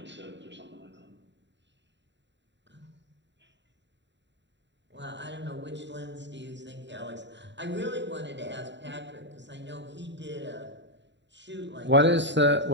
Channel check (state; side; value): late; left; 0.52 ms